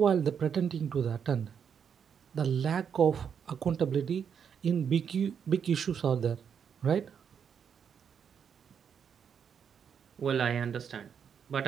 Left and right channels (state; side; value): quieter; left; 7.4 dB